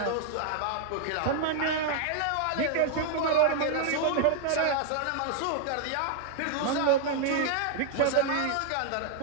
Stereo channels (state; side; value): different; both; correlation 0.00